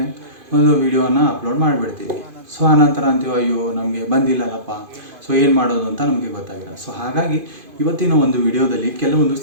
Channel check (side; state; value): left; late; 2.5 ms